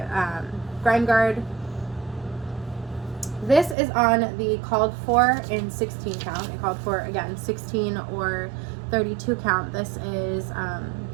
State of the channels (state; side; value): drops out; left; at 3.8 s